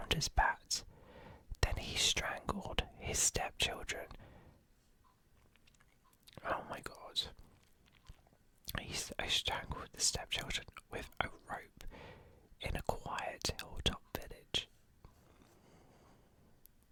bat. Then he strangled his stepchildren. Oh my god. He strangled the stepchildren with a rope in a quiet hilltop village.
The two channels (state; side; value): identical; both; correlation 1.00